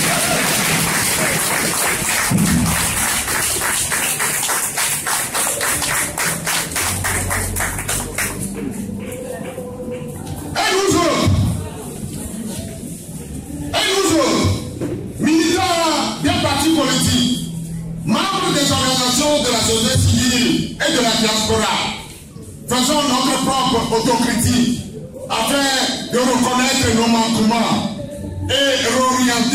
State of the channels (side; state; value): both; identical; correlation 1.00